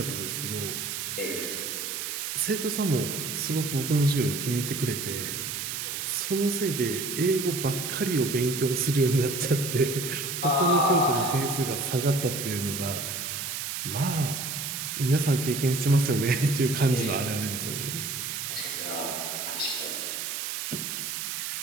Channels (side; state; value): right; noise; hiss, 4 dB below the sound